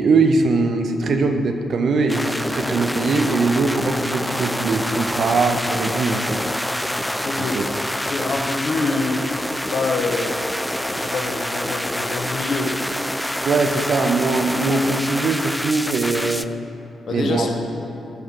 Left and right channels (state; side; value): normal; both; correlation 0.83